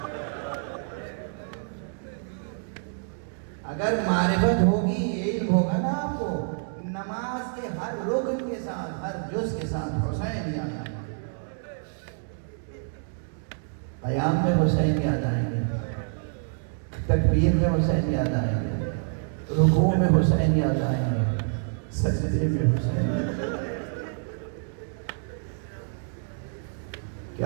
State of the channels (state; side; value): silent; left; 60 dB below the other